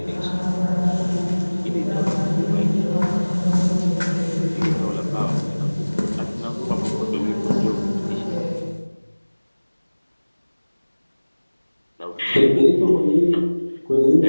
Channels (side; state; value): both; inverted; correlation -1.00